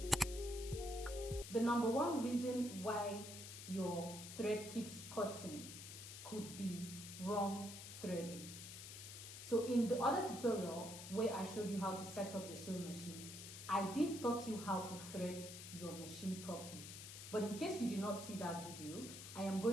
The number one reason why your thread keeps cutting could be wrong threading. So in the other tutorial where I showed you how to set up your sewing machine, I did taught you how to thread your machine properly. But in case you did not see that video, I am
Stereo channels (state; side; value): noise; left; hiss, 10 dB below the sound